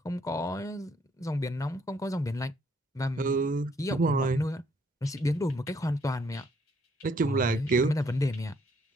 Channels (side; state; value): both; normal; correlation 0.68